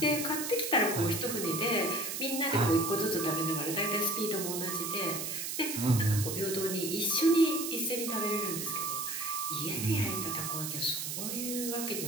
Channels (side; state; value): right; noise; hiss, 4 dB below the sound